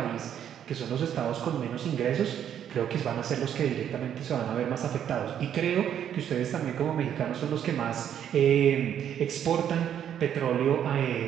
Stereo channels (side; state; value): left; quieter; 9.5 dB